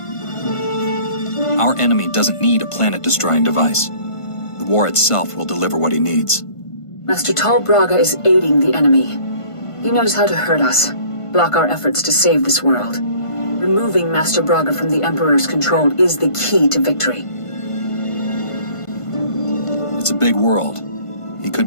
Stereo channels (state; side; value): late; right; 1.5 ms